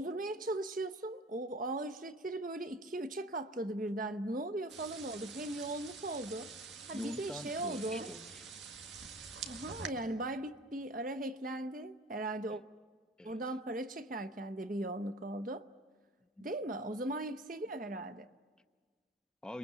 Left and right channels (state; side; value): normal; both; correlation 0.43